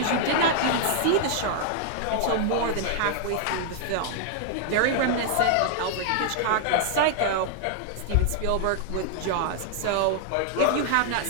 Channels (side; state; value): both; different; correlation -0.01